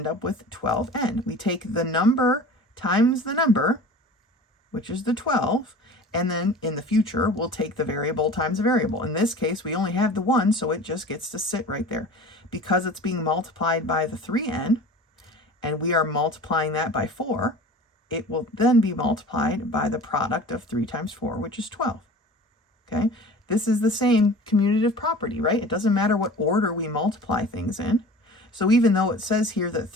up with 12n. We take the number times the number, which is the 12, and then in the future, we'll take the variable times the variable. In this case, we only have the 1, so it just gets to sit right there. Because it's being multiplied by the 3n, and we are multiplying that by 4, it will then be multiplied by the product of 3 times 4, which is 12. Okay? This is the same commutative property, right? It doesn't matter what order we multiply things in. So even though it says here that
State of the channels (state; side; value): normal; both; correlation 0.40